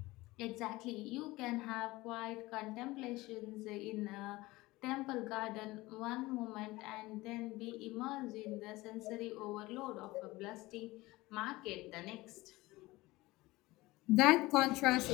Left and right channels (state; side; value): quieter; right; 20.0 dB